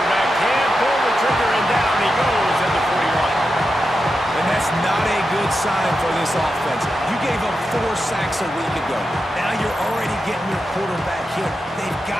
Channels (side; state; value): both; normal; correlation 0.89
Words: can't pull the trigger, and down he goes at the 41. And that's not a good sign for this offense. You gave up 4 sacks a week ago. Now you're already getting your quarterback hit. They've